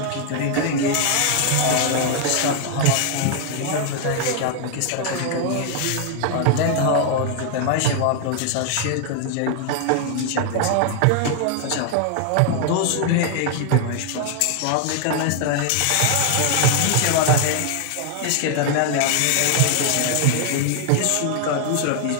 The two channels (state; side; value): different; both; correlation 0.00